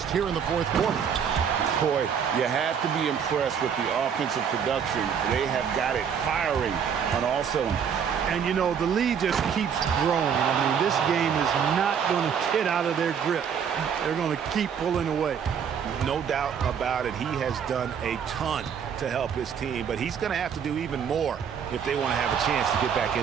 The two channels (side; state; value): left; quieter; 7.5 dB